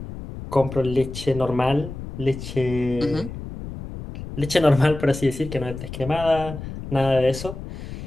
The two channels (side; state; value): left; noise; rumble, 10 dB below the sound